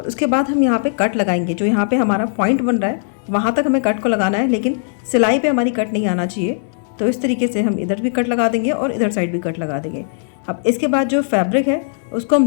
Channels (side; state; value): right; silent; digital silence